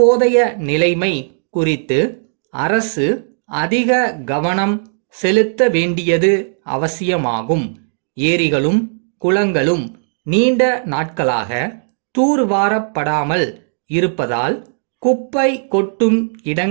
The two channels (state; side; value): silent; left; digital silence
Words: நிலைமை குறித்து அரசு அதிக கவனம் செலுத்த வேண்டியது அவசியமாகும். ஏரிகளும் குளங்களும் நீண்ட நாட்களாக தூர்வாரப்படாமல் இருப்பதால் குப்பை கொட்டும்